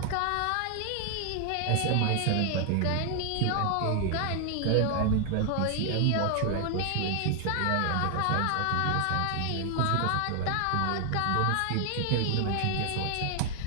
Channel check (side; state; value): both; different; correlation 0.00